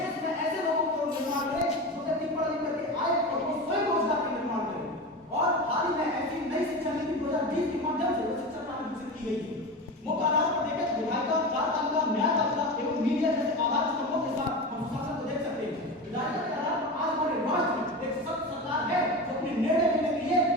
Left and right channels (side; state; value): both; normal; correlation 0.25